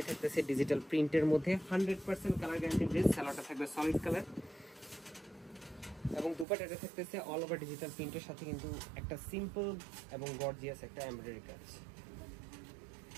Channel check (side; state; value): left; drops out; at 6.5 s